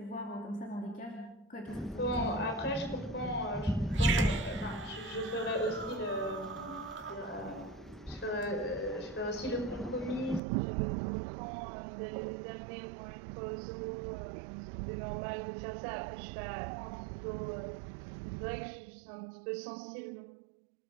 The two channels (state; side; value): drops out; left; at 10.4 s